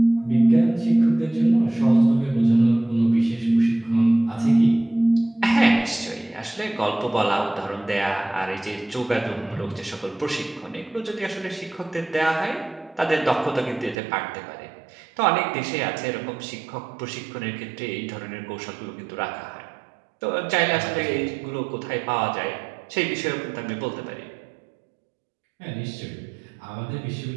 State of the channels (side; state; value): left; drops out; at 14.0 s